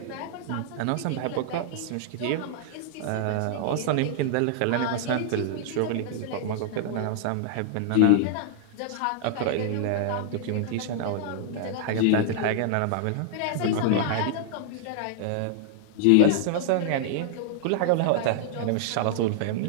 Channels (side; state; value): both; different; correlation -0.01